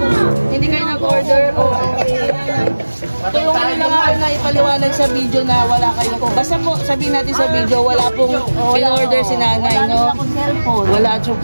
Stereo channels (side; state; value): both; inverted; correlation -1.00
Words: Hindi kayo nag-order? Tulungan nyo lang ako na ipaliwanag sa video na wala kayo po. Basta po, sabihin natin sa video, wala pong in-order si nanay, no? Wala